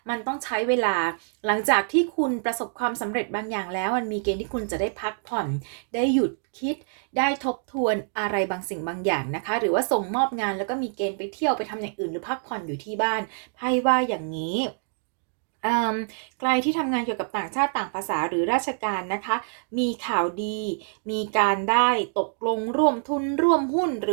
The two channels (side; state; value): left; silent; digital silence